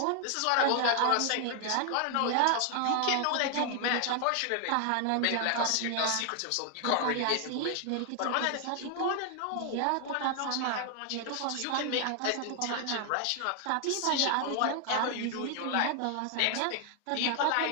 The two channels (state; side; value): different; both; correlation 0.00